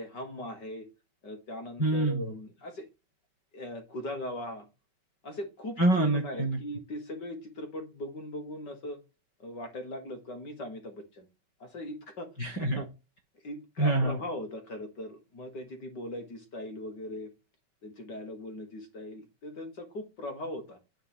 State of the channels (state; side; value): late; right; 5.2 ms